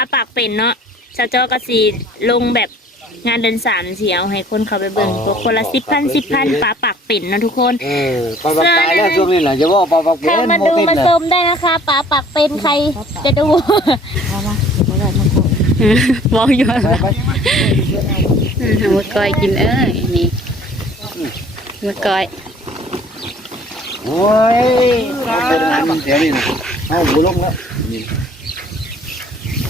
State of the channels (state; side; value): normal; both; correlation 0.54